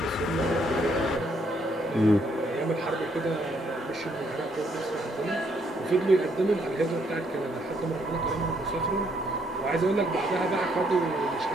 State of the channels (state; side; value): normal; both; correlation 0.71